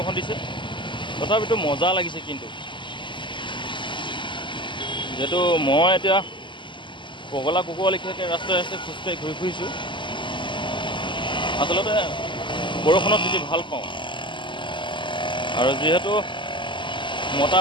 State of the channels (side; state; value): right; late; 0.24 ms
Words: দিছে, তথাপিতো মজা লাগিছে। কিন্তু যিহেতু মই এতিয়া পগলা কুকুৰ লেখীয়াকৈ ৰাস্তাই ৰাস্তাই খোজকাঢ়ি ঘূৰি ফুৰিছোঁ, আচলতে বৰষুণত তিতি ভাল পাওঁ। আৰু যিহেতু মতা